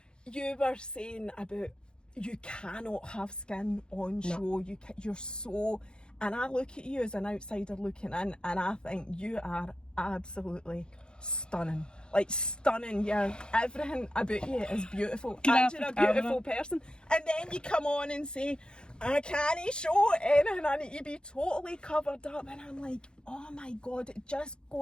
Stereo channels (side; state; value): right; late; 0.049 ms